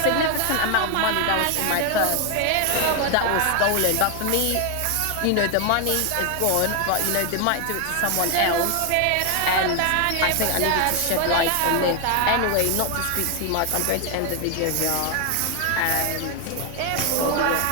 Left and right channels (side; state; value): both; different; correlation 0.01